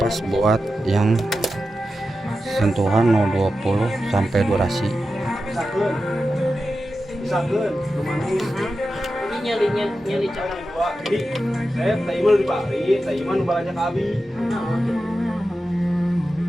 buat yang sentuhan 020 sampai durasi.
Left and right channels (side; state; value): both; normal; correlation 0.91